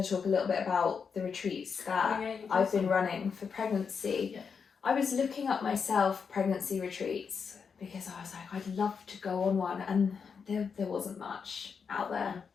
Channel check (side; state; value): right; quieter; 6.0 dB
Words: to talk a little bit about the retreats that I've been running for pregnancy. I was looking up myself pregnancy retreats because I was like, I'd love to go on one, and there wasn't much out there.